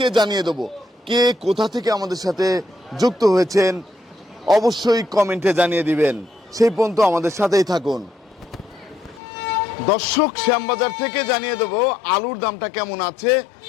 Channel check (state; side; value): drops out; right; at 9.2 s